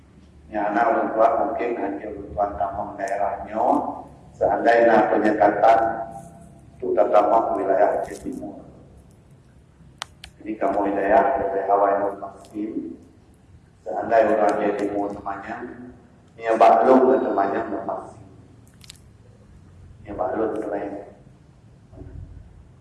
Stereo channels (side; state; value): both; identical; correlation 1.00